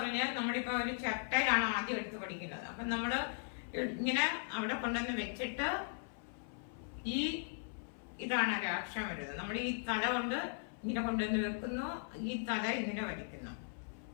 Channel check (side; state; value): right; silent; 52 dB below the other